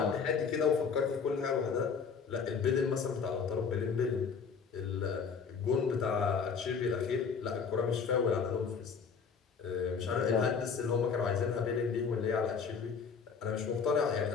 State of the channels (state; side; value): quieter; right; 5.9 dB